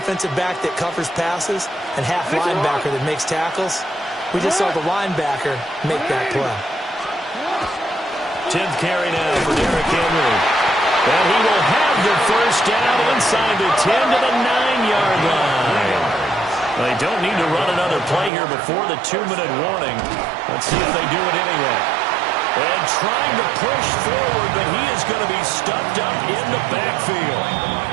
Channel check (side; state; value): left; drops out; at 18.3 s